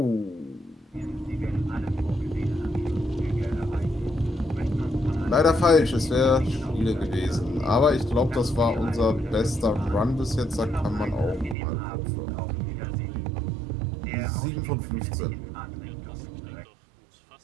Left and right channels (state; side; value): drops out; left; at 11.6 s